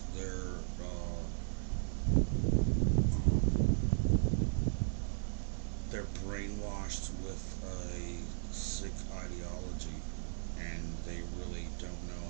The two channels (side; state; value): left; silent; 53 dB below the other